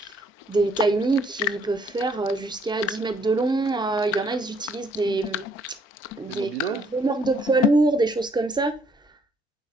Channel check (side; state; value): both; normal; correlation 0.66